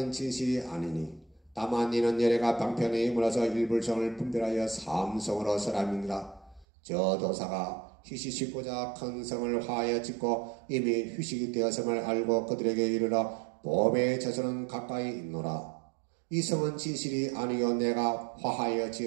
진실이 아니니 다만 이는 예래가 방편에 물어서 일불성을 분별하여 삼성으로 설함이니라. 저 도사가 휴식 짓고자 큰 성을 화하여 짓고 이미 휴식이 되었음을 알고 그들에게 이르러 봄에 저서는 가까이 있노라. 이 성은 진실이 아니요 내가 화하여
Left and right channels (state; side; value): drops out; left; at 6.7 s